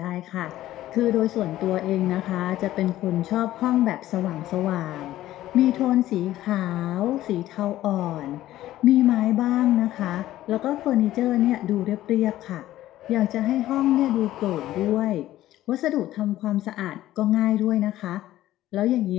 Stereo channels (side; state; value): right; quieter; 14.4 dB